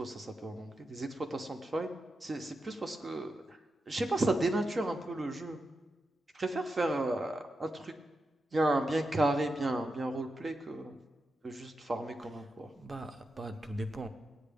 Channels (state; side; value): normal; both; correlation 0.88